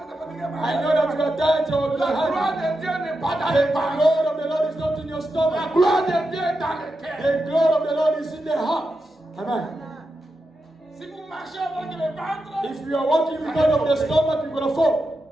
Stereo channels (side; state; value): both; normal; correlation 0.88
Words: pas dit que I know that you are tired of la your gloire hand. de Dieu n'est pas dans The les paroles. glory of the Lord is not in your La stomach. gloire de Dieu est dans le cœur. The glory of the Lord is in the heart. Amen. Si vous marchez avec le ventre, If you are walking because of the stomach, you're going to fall.